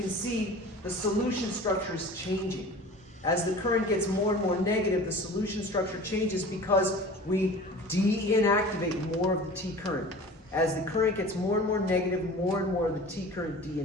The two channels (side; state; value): both; normal; correlation 0.40